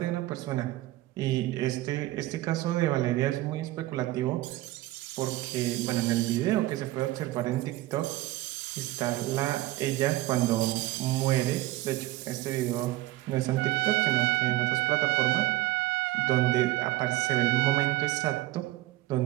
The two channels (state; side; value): quieter; left; 17.3 dB